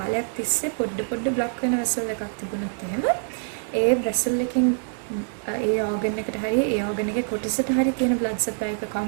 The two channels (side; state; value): left; silent; digital silence